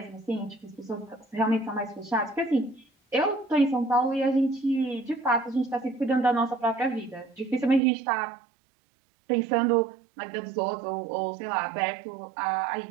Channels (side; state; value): left; drops out; at 7.8 s